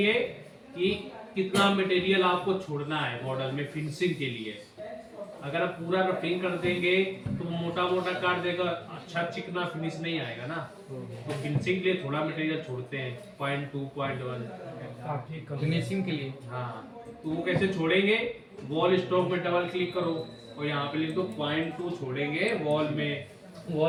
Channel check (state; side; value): identical; both; correlation 1.00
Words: कि कितना मटेरियल आपको छोड़ना है मॉडल में फिनिशिंग के लिए। अगर आप पूरा रफिंग कर देंगे तो मोटा मोटा काट देगा, अच्छा चिकना फिनिश नहीं आएगा ना। तो फिनिशिंग के लिए थोड़ा मटेरियल छोड़ते हैं, 0.2 0.1। फिनिशिंग के लिए हाँ, तो वो कैसे छोड़ेंगे, वॉल स्टॉक में डबल क्लिक करो और यहाँ पे लिख दो 0.2 छोड़ेंगे वॉल में।